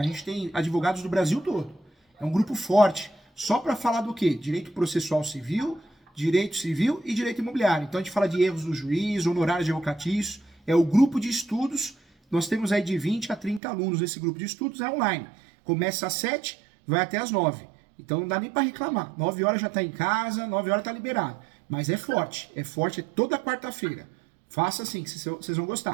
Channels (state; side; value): drops out; left; at 13.6 s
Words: gente tem advogados do Brasil todo. É um grupo forte, só para falar do quê? Direito processual civil, direito civil e direito imobiliário. Então a gente fala de erros do juiz, honorários advocatícios, é o grupo de estudos. Nós temos aí de 20 a 30 alunos nesse grupo de estudos, é online. Começa às 7, vai até às 9. Então não dá nem para reclamar. 9 horas já está em casa, 9 horas está liberado. Mas é forte toda quarta-feira. Faça assim, que vocês vão